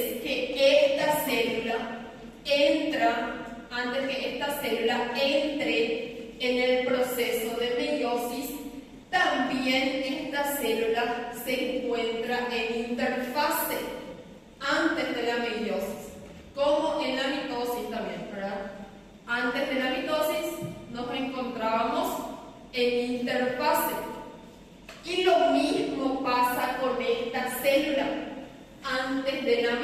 que esta célula entre en el proceso de meiosis, también esta célula se encuentra en interfase antes de la meiosis, como en la mitosis también, ¿verdad? Antes de la mitosis nos encontrábamos en interfase. Y lo mismo pasa con esta célula. Antes de la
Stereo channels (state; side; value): identical; both; correlation 1.00